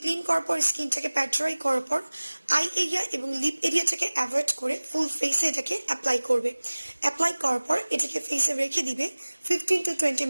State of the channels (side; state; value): both; inverted; correlation -1.00